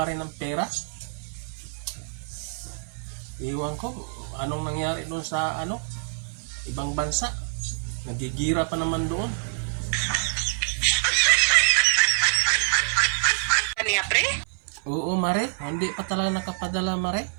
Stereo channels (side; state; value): left; silent; 60 dB below the other